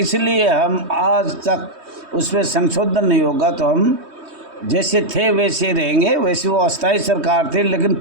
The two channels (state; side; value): late; left; 3.2 ms